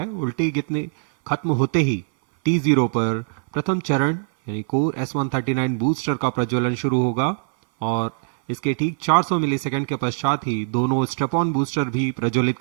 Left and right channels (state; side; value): silent; left; 64 dB below the other